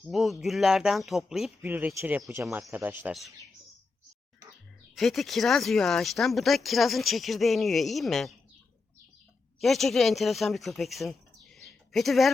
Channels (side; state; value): right; quieter; 4.0 dB